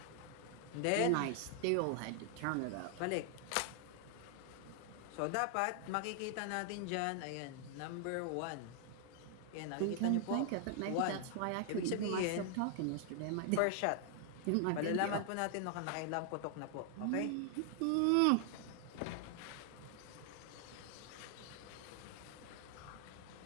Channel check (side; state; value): both; different; correlation 0.00